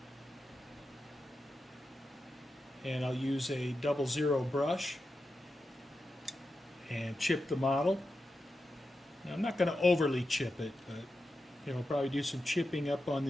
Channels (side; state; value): both; normal; correlation 0.90